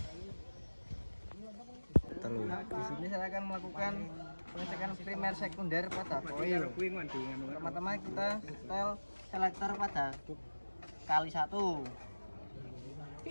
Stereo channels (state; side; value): inverted; both; correlation -1.00